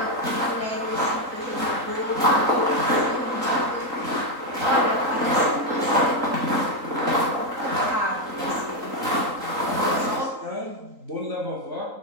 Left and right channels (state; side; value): late; left; 3.9 ms